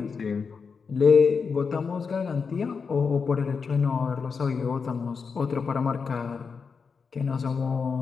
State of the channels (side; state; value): right; quieter; 5.4 dB